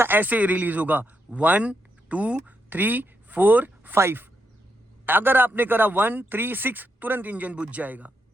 ऐसे रिलीज होगा, 1 2 3 4 5। अगर आपने करा 1 3 6, तुरंत इंजन बुझ जाएगा।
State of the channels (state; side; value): normal; both; correlation 0.82